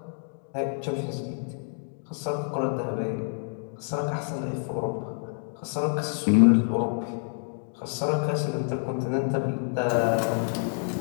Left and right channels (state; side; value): silent; right; 60 dB below the other